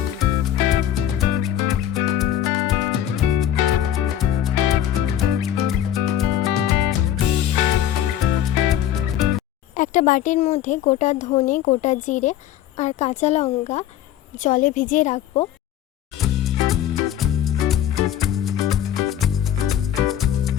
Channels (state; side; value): quieter; right; 11.3 dB